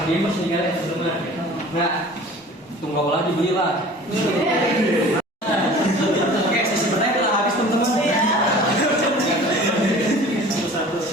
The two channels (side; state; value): both; normal; correlation 0.44